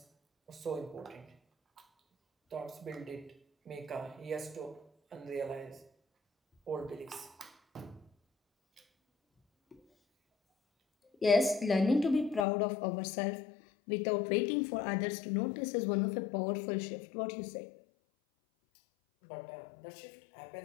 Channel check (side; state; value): right; drops out; at 12.5 s